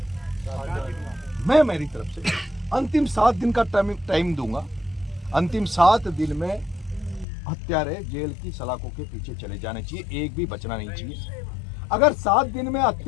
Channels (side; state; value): right; drops out; at 7.2 s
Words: मैं मेरी तरफ से अंतिम 7 दिन का टाइम दूंगा। अंतिम 7 दिन में हत्यारे जेल की सलाखों के पीछे चले जाने चाहिए, एक भी बचना नहीं चाहिए। अगर 7 दिन में